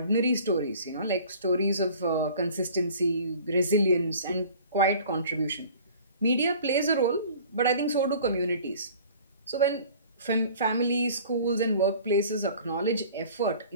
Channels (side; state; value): both; inverted; correlation -0.47